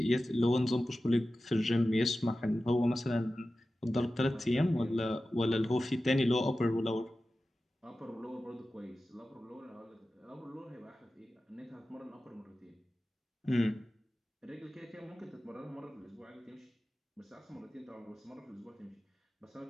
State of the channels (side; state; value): both; normal; correlation 0.94